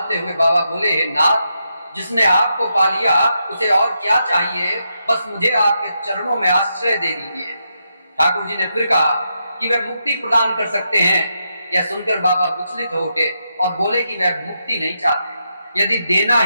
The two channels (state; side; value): inverted; both; correlation -0.83